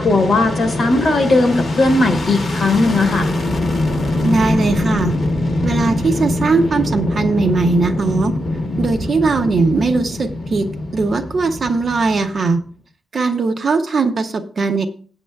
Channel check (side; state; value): both; normal; correlation 0.83